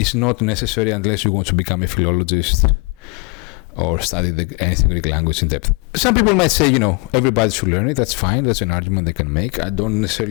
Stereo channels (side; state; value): right; quieter; 30.1 dB